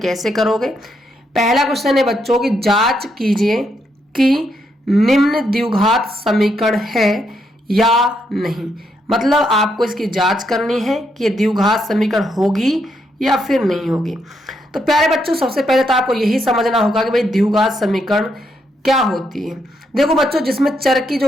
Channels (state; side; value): normal; both; correlation 0.78